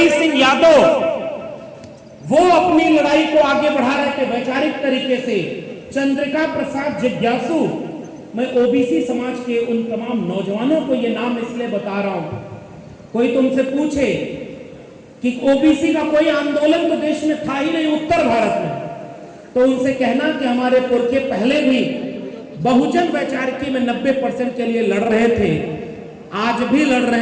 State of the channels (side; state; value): both; identical; correlation 1.00